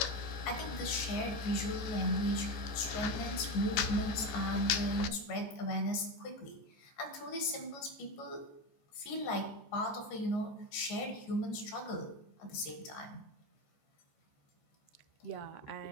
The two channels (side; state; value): right; late; 14 ms